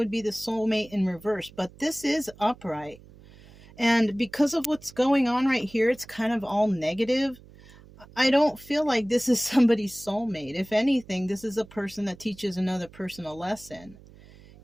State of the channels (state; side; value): noise; right; hum, 22 dB below the sound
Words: be the soulmate in reverse, but this is upright. And because of what's going on right here, it's kind of all negative. I don't feel like this is somebody's soulmate. If anything, this is a person that teaches another person a lesson,